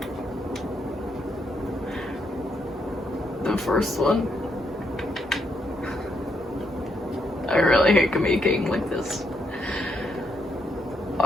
The first one? I really hate communicating like this.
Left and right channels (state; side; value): normal; both; correlation 0.77